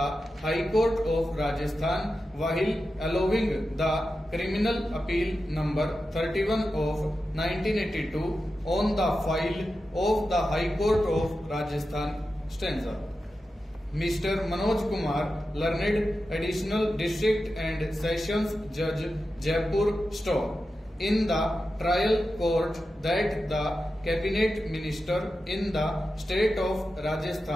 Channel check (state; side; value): normal; both; correlation 0.91